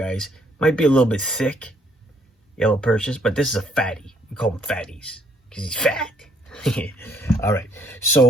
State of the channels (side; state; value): both; normal; correlation 0.67